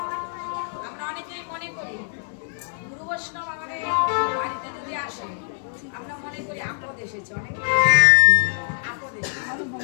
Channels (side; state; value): right; silent; digital silence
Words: আমরা অনেকেই মনে করি গুরু বৈষ্ণব আমাদের বাড়িতে যদি আসে আমরা মনে করি আপদ এসেছে অনেক আপদ এসেছে